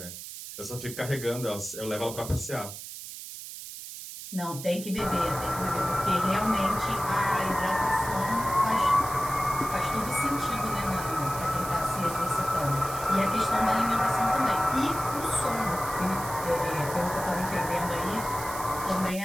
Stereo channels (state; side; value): noise; right; hiss, 11 dB below the sound